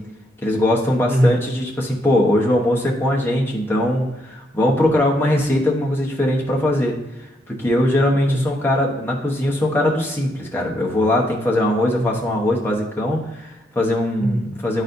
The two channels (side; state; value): both; normal; correlation 0.76